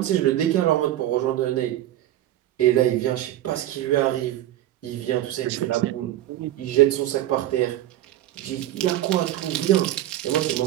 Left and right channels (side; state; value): left; quieter; 13.6 dB